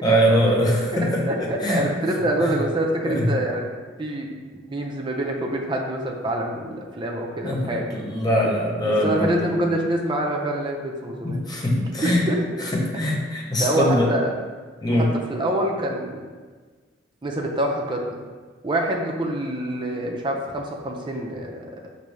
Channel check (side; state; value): both; normal; correlation 0.52